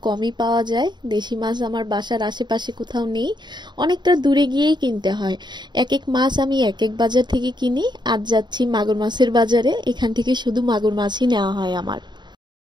কমই পাওয়া যায়। দেশি মাছ আমার বাসার আশেপাশে কোথাও নেই, অনেকটা দূরে গিয়েই কিনতে হয়। এক এক মাছ আমি এক এক বাজার থেকে কিনি। আজ যাচ্ছি মাগুর মাছের বাজারে, এখান থেকে শুধু মাগুর মাছই নেওয়া হয় আমার।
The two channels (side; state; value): left; late; 0.21 ms